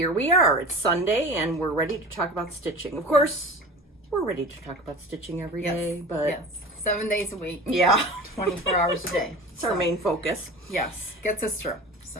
we are. It's Sunday, and we're ready to talk about stitching. Of course, we're ready to talk about stitching every day, but... Yes, 7 days a week. Yeah. 24 hours a day. It's our main focus. Yes, gets us through.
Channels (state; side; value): normal; both; correlation 0.35